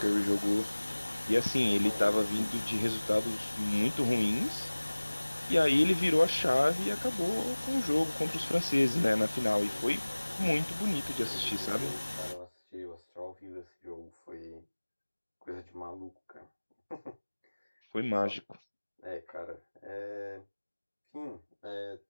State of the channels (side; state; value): both; inverted; correlation -1.00